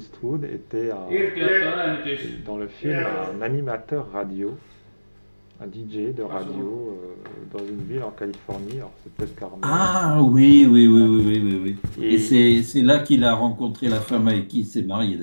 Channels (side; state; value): both; inverted; correlation -1.00